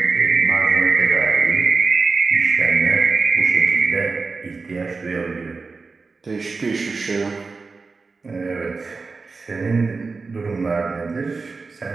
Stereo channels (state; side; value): quieter; left; 4.3 dB